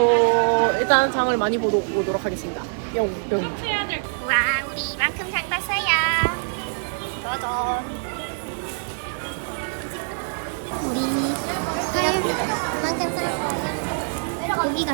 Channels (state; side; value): silent; left; 63 dB below the other